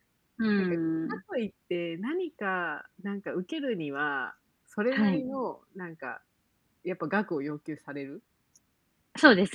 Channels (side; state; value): both; identical; correlation 1.00